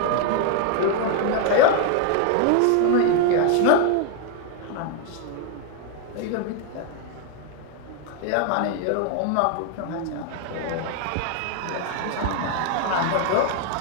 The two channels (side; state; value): both; different; correlation 0.01